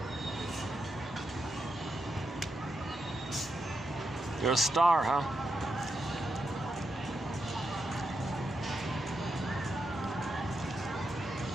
You're a star, huh?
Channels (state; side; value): normal; both; correlation 0.84